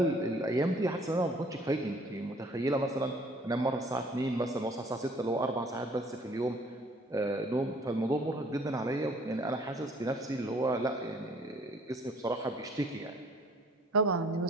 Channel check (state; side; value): normal; both; correlation 0.57